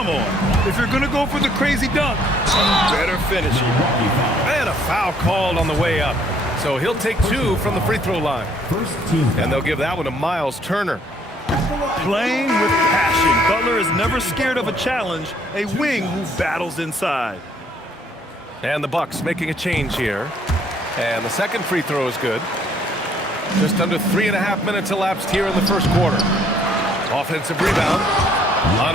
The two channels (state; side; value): normal; both; correlation 0.64